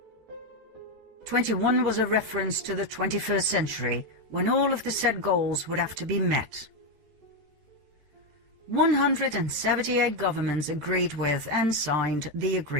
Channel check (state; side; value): late; left; 13 ms